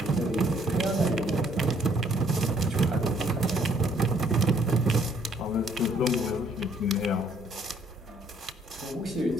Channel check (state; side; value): normal; both; correlation 0.65